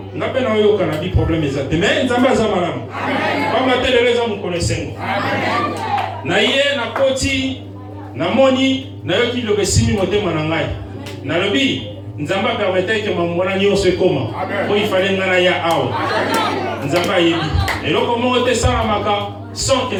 nga mpe na oyoka na bi problème eza te me nzambe aza malamu pamba te lelo eza mokolo esengo na ye nakoti namoni nayoki liloba esimi motema na ngai nalobi nzambe apermetaki ke mamona nyonso ekoma po ifale nga na ya awa nzambe ayebi eloko moko te esalamaka sans que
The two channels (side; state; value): both; identical; correlation 1.00